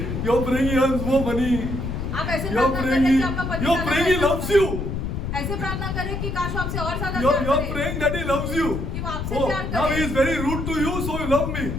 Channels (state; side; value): noise; left; rumble, 4 dB below the sound